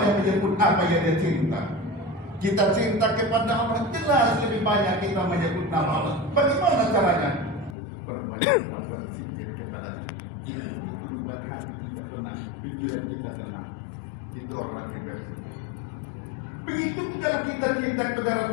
menyebut apa yang dia cinta. Kita cinta kepada Allah, jelas lebih banyak kita menyebut nama Allah. Bagaimana caranya? Perbanyaklah berzikir kepada Dia. Itu buat hati kita tenang, pikiran kita tenang. Itu orang yang berzikir. Begitu kalau kita cinta kepada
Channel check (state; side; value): drops out; right; at 7.8 s